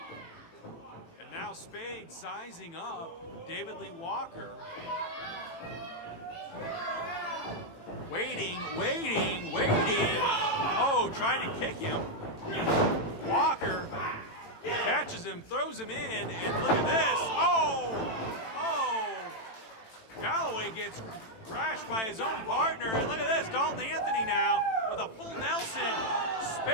Now Spade sizing up David Lee Walker. Waiting. Oh, trying to kick him. Walker catches him, throws him in, and look at this. Oh! Galloway gets crashed by his own partner, and look at this. Dalton Anthony now with a full Nelson.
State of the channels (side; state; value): right; late; 18 ms